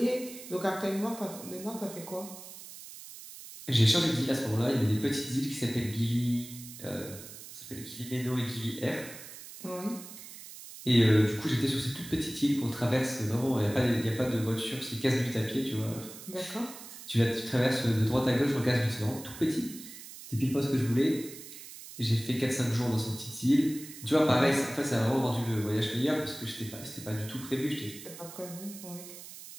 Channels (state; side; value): noise; right; hiss, 14 dB below the sound